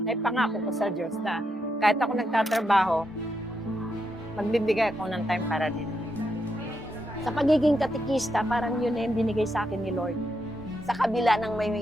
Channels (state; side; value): normal; both; correlation 0.82